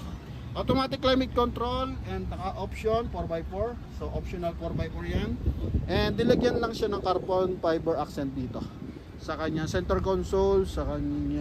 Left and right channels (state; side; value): identical; both; correlation 1.00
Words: automatic climate control, and naka option 4x4. So optional 4x4 yan. And nilagyan lang siya ng carbon fiber accent dito sa kanyang center console, sa